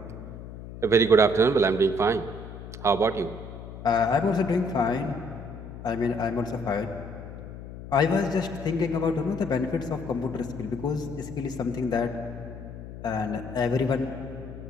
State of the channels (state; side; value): noise; left; hum, 12 dB below the sound